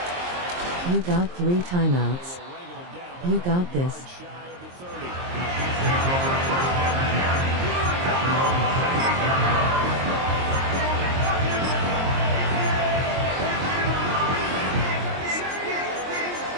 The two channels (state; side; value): late; left; 23 ms